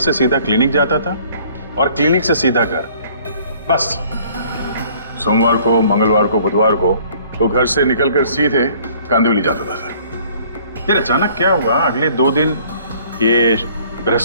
सीधा क्लिनिक जाता था और क्लिनिक से सीधा घर, बस। सोमवार को, मंगलवार को, बुधवार को वो घर से निकलकर सीधे कांदिवली जाता था सर। फिर अचानक क्या हुआ, अगले 2 दिन, ये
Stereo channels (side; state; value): both; inverted; correlation -0.56